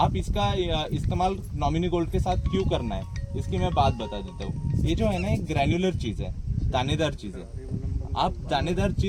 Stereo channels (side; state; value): both; identical; correlation 1.00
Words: इसका इस्तेमाल नॉमिनी गोल्ड के साथ क्यों करना है, इसकी मैं बात बता देता हूँ। ये जो है ना एक ग्रैन्युलर चीज है, दानेदार चीज है। आप दानेदार